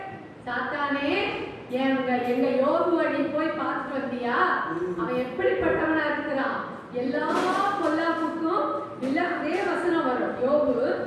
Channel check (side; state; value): both; identical; correlation 1.00